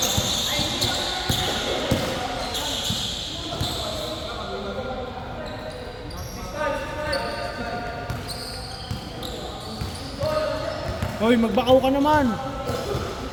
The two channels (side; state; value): both; identical; correlation 1.00